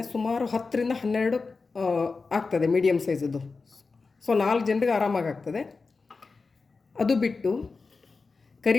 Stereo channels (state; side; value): quieter; right; 4.3 dB